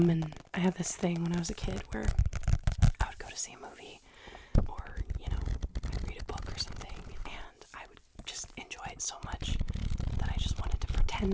and I had this thing when I was a kid where I would go to see a movie, or, I'd read a book or something, and I would just enjoy it so much that I just wanted to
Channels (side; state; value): both; identical; correlation 1.00